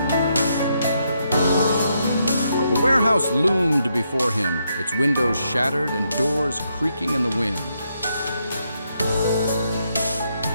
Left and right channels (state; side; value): inverted; both; correlation -0.79